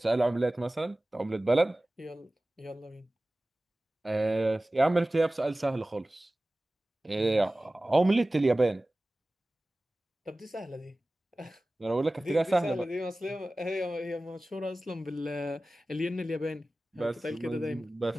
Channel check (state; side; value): normal; both; correlation 0.97